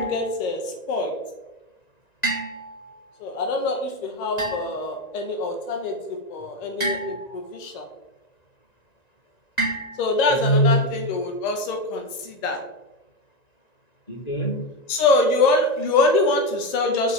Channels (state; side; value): late; right; 1.9 ms